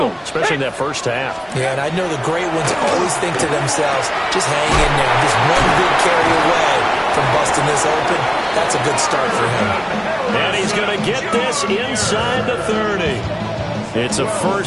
especially in that first half. Yeah, and I know the great ones always think to themselves, just hang in there. Just one big carry away from busting this open. That's a good start for him. And he's going to get this inside the 30. It's a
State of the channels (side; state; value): both; identical; correlation 1.00